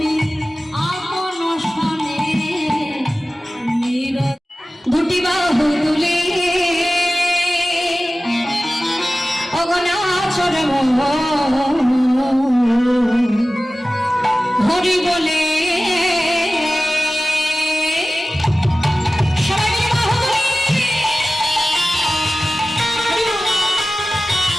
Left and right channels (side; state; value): both; normal; correlation 0.96